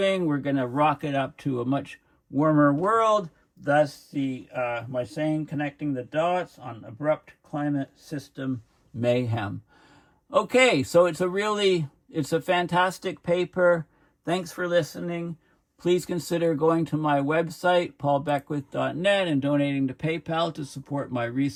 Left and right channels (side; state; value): both; identical; correlation 1.00